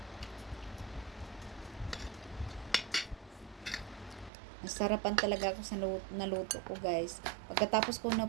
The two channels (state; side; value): drops out; left; at 4.3 s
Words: Nasarapan talaga ako sa naluto ko guys. Pagkatapos ko na